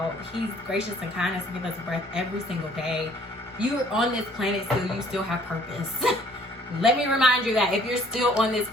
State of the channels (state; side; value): normal; both; correlation 0.59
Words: gracious and kind enough to give us breath every single day. You're on this planet still, you still have purpose. Let me remind you that if you're still on this